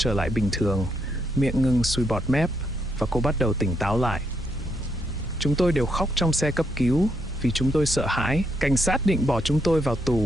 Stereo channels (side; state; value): both; normal; correlation 0.77